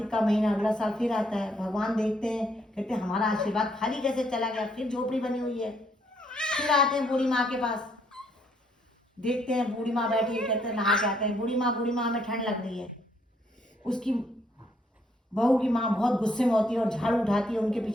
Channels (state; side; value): normal; both; correlation 0.70